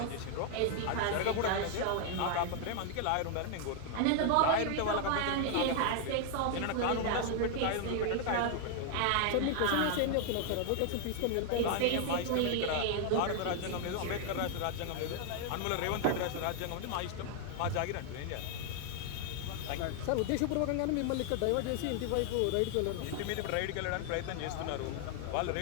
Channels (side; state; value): both; different; correlation 0.00